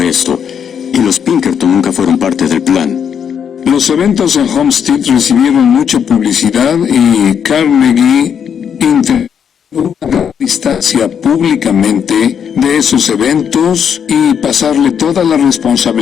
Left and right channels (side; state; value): right; quieter; 7.8 dB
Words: esto, y los Pinkerton nunca fueron parte del plan. Los eventos en Homestead recibieron mucha publicidad y Carnegie intentó una distancia públicamente de esos eventos y pasarle toda la